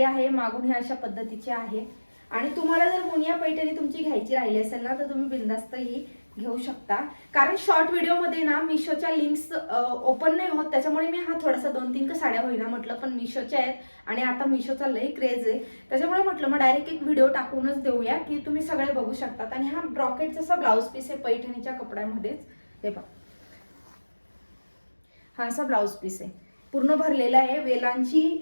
आहे, मागून हे अशा पद्धतीची आहे. आणि तुम्हाला जर मुनिया पैठणी तुमची घ्यायची राहिली असेल ना, तर तुम्ही बिंदास्त ही घेऊ शकता. कारण शॉर्ट व्हिडिओमध्ये ना मिशोच्या लिंक्स ओपन नाही होत, त्याच्यामुळे मी हा थोडासा 2-3 साड्या होईना म्हटलं, पण मिशोच्या आहेत आणि आता मिशोचा लई क्रेज आहे, त्याच्यामुळे म्हटलं मग डायरेक्ट एक व्हिडिओ टाकूनच देऊया की तुम्ही सगळे बघू शकतात. आणि हा ब्रॉकेट जसा ब्लाऊज पीस आहे पैठणीच्या कपड्यामध्येच. हे पहा, हा असा ब्लाऊज पीस आहे, पूर्ण भरलेला आहे,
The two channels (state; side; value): inverted; both; correlation -1.00